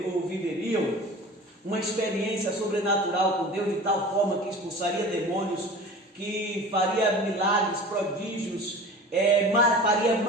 ou viveriam uma experiência sobrenatural com Deus de tal forma que expulsaria demônios, que faria milagres, prodígios, faria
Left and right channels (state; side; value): normal; both; correlation 0.38